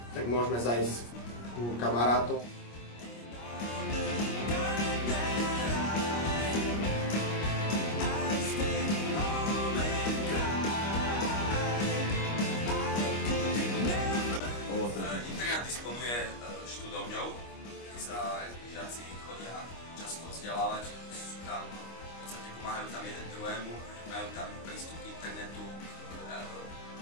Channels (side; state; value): right; late; 25 ms